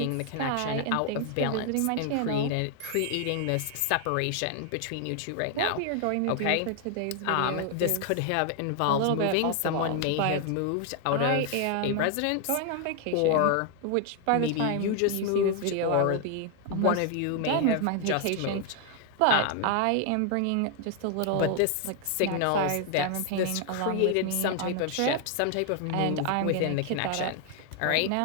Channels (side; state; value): both; different; correlation 0.00